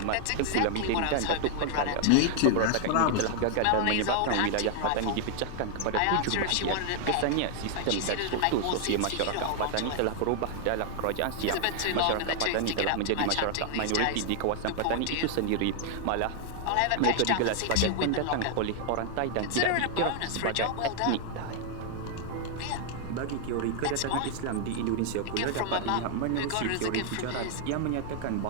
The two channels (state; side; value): different; both; correlation 0.00